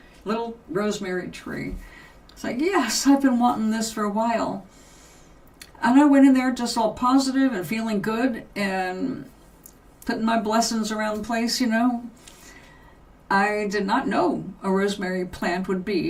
little rosemary tree. It's like, yes, I've been wanting this for a while. And I went in there just all positive and feeling good and putting my blessings around the place, you know. I did not know a rosemary plant would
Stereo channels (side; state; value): both; identical; correlation 1.00